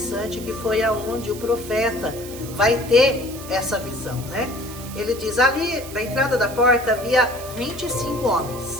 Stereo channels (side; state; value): right; noise; hiss, 14 dB below the sound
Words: que foi aonde o profeta vai ter essa visão, né? Ele diz, ali na entrada da porta havia 25